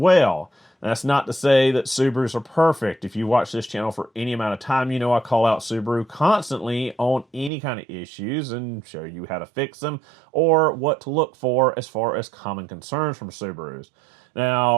That's not to say that Subarus are perfect. If you watch this channel for any amount of time, you know I call out Subaru constantly on any kind of issues and show you how to fix them or what to look for as far as common concerns from Subarus.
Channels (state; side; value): drops out; left; at 7.5 s